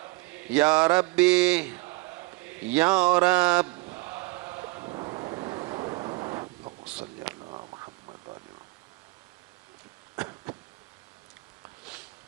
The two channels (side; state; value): left; quieter; 22.7 dB